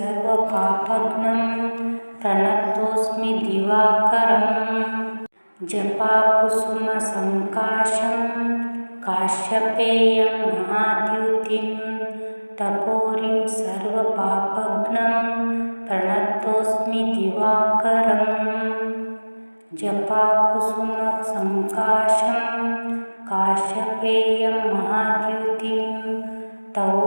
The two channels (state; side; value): inverted; both; correlation -1.00